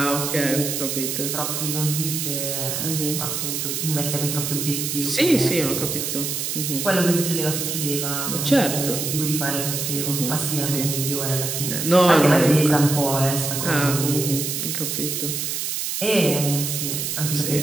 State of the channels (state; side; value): noise; right; hiss, 2 dB below the sound